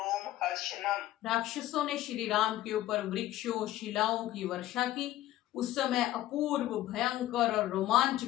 हर्षणम। राक्षसों ने श्री राम के ऊपर वृक्षों, शिलाओं की वर्षा की। उस समय अपूर्व, भयंकर और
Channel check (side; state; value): right; quieter; 14.3 dB